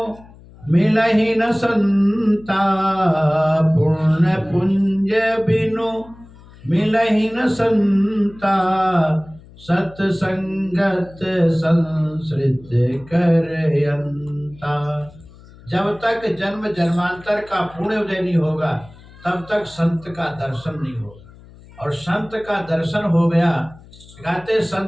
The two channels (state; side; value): noise; left; hum, 22 dB below the sound